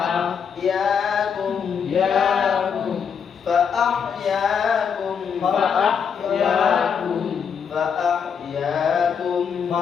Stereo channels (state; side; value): quieter; right; 6.9 dB